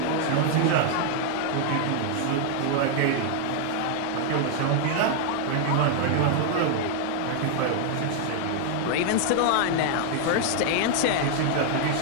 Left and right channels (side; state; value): both; different; correlation 0.00